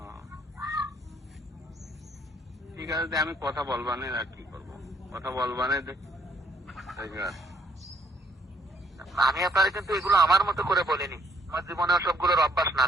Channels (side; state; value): both; normal; correlation 0.67